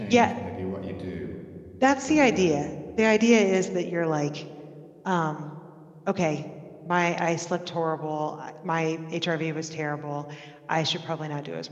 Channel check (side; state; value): both; identical; correlation 1.00